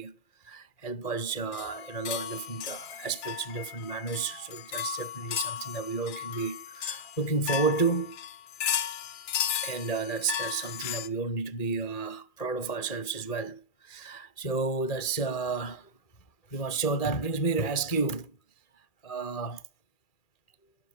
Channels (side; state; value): right; late; 2.4 ms